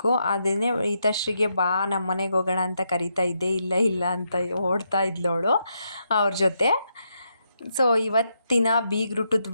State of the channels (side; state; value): both; inverted; correlation -0.81